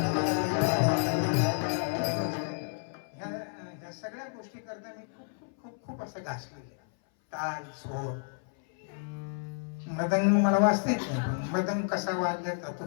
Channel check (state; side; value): silent; right; 57 dB below the other